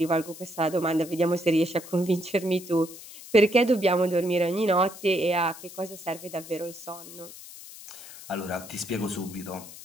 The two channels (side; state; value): left; noise; hiss, 15 dB below the sound